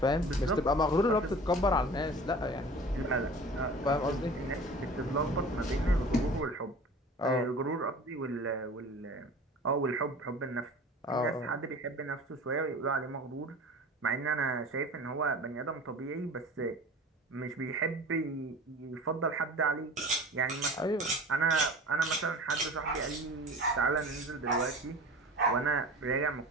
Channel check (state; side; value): normal; both; correlation 0.39